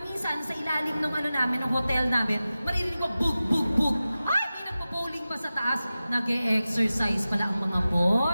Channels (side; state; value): both; inverted; correlation -0.95